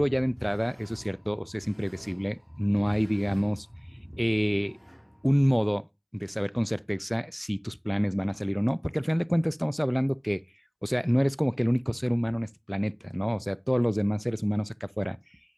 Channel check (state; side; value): identical; both; correlation 1.00